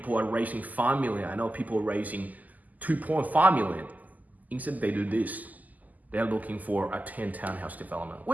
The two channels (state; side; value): late; left; 0.080 ms